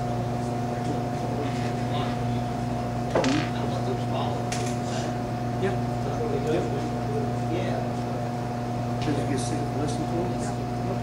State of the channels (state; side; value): identical; both; correlation 1.00